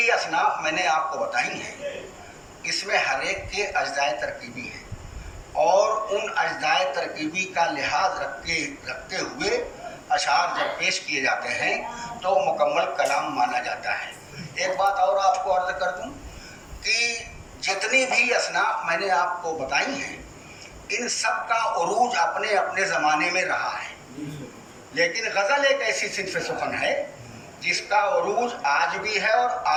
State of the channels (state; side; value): identical; both; correlation 1.00